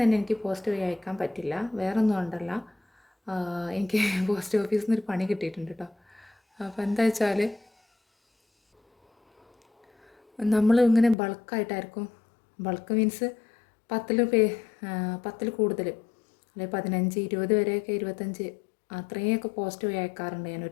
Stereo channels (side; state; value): right; drops out; at 11.2 s